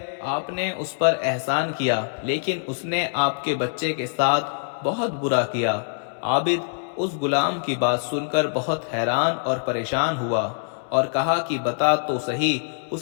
آپ نے اس پر احسان کیا، لیکن اس نے آپ کے بچے کے ساتھ بہت برا کیا۔ عابد اس غلام کی بات سن کر بہت حیران اور پریشان ہوا اور کہا کہ بتا تو صحیح،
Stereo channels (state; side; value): silent; right; 62 dB below the other